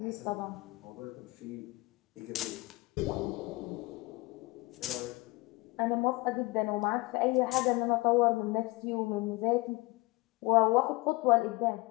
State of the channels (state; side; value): quieter; right; 23.4 dB